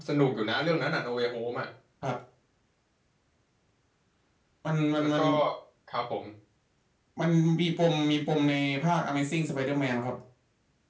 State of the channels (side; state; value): both; identical; correlation 1.00